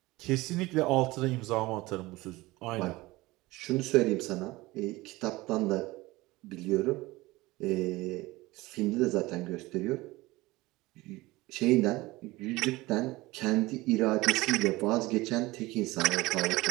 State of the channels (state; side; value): quieter; left; 20.3 dB